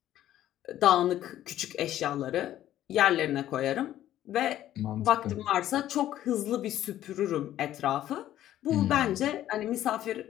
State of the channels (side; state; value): right; quieter; 12.7 dB